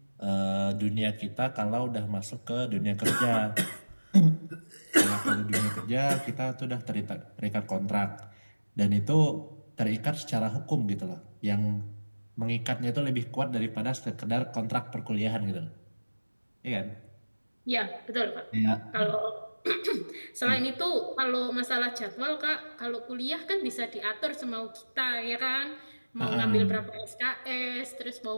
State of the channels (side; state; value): both; inverted; correlation -1.00